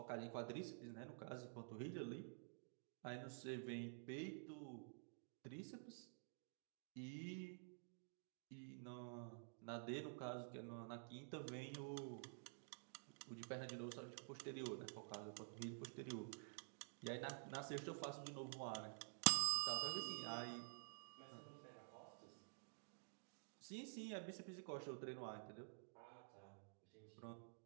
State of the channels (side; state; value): left; silent; digital silence